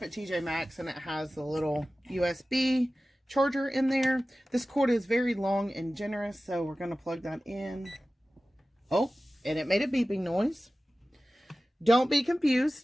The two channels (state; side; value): normal; both; correlation 0.96